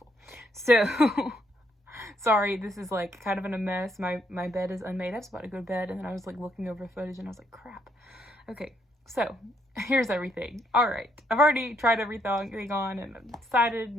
So sorry, this is like kind of in a mess. My bed is unmade. I was about to go to bed and then I was like looking over footage and I was like, crap. Okay, so here's everything. All right, I've already tried everything on and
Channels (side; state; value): both; normal; correlation 0.72